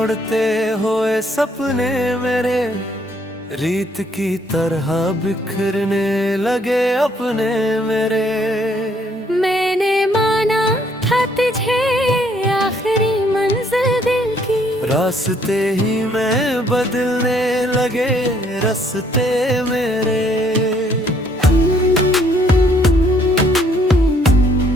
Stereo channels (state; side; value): normal; both; correlation 0.66